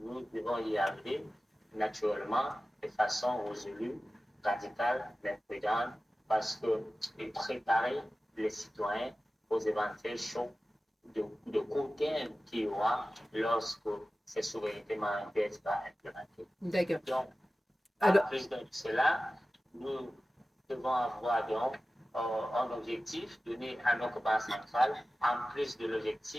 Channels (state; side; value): normal; both; correlation 0.96